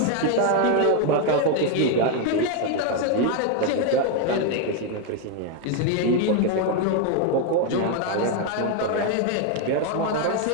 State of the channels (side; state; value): both; different; correlation 0.01